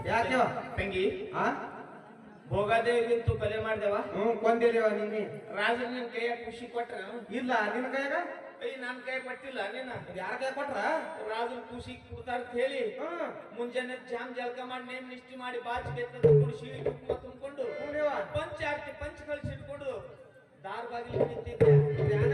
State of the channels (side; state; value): both; identical; correlation 1.00